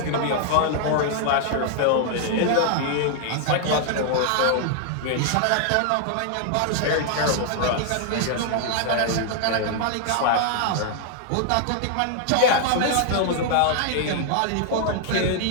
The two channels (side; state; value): both; different; correlation 0.00